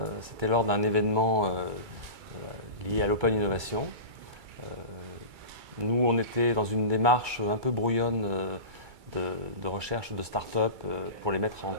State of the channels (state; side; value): late; left; 2.3 ms